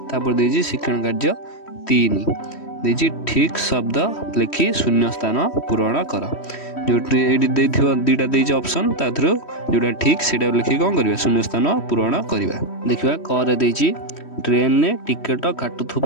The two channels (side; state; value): right; late; 3.1 ms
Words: तापर देजी शिक्षण कार्य 3 देजी ठीक शब्द लिखि शून्य स्थान पूरण कर। जो दुईटा देजी ऑप्शन ता थ्रू जोटा ठीक सेटा लिखि कौन करवा शून्य स्थान पूरण करवा। देखिबा कर देजी ट्रेन ने टिकट